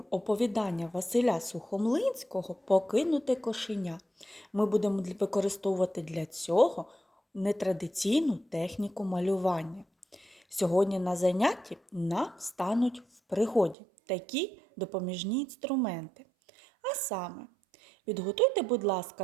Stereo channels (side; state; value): left; drops out; at 13.8 s